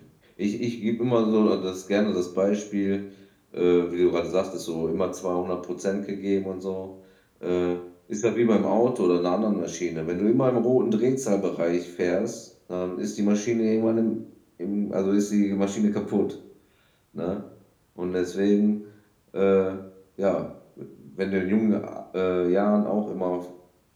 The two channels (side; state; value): both; identical; correlation 1.00